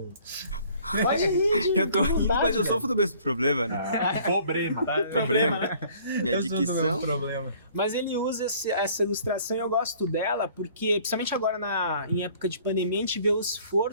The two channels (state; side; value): inverted; both; correlation -0.55